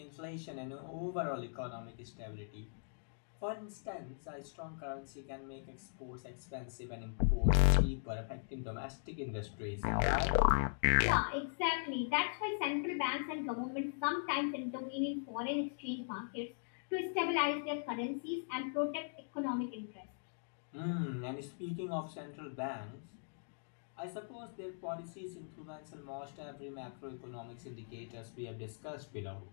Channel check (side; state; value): right; silent; digital silence